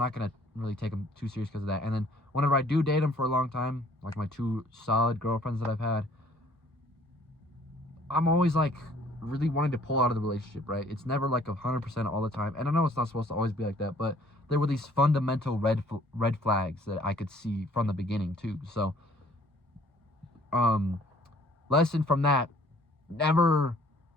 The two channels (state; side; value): normal; both; correlation 0.58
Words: gonna really take them too serious because of that. And then whenever I do date them for a long time, like my 2 solid girlfriends that I've had, I'm always like really wanting to pull out of the relationship, right? It's never like 100% all the time, and I know it's not supposed to always be like that, but there were these fundamental red flags that I could see from the beginning too. So lesson from that: never